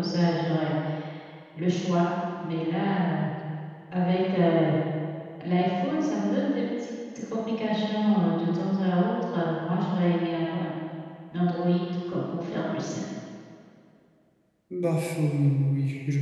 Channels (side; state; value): both; identical; correlation 1.00